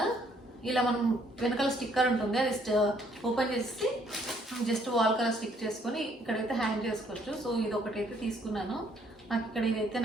ఇలా మనం వెనకాల స్టిక్కర్ ఉంటుంది, అది ఓపెన్ చేసి జస్ట్ వాల్ కలర్ స్టిక్ చేసుకొని ఇక్కడైతే హ్యాంగ్ చేసుకోవచ్చు. సో ఇది ఒకటైతే తీసుకున్నాను, నాకు ఇక్కడ ఇదైతే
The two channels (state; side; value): normal; both; correlation 0.66